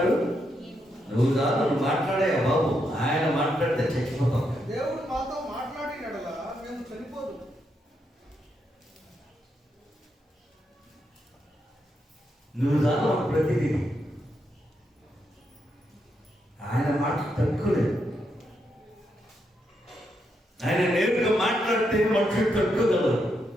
నువ్వు కాదు, నువ్వు మాట్లాడే బాబు, ఆయన మాట్లాడితే చచ్చిపోతాం. దేవుడు మాతో మాట్లాడినడలా మేము చనిపోదు. నువ్వు కాదు ప్రతిదీ. ఆయన మాట తక్కువలేదు. ఆయన నేరుగా మాట్లాడితే మనుషులు తక్కువగలరు,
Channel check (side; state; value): both; normal; correlation 0.81